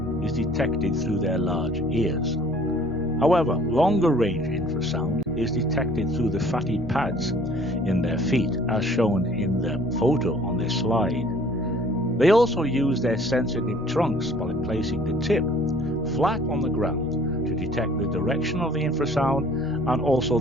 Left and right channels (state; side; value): normal; both; correlation 0.54